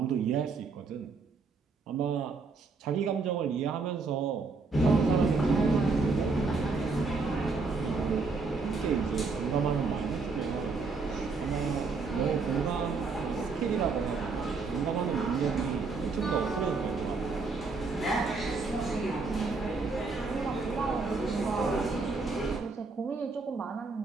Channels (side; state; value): left; quieter; 4.3 dB